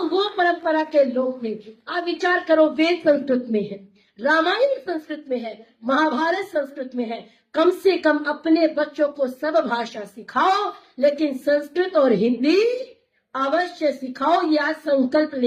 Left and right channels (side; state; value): both; identical; correlation 1.00